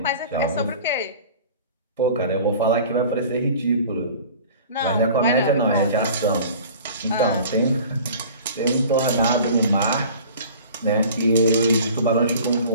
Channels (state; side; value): inverted; both; correlation -0.44